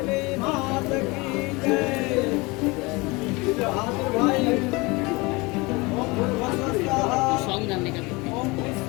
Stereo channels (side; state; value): right; quieter; 24.9 dB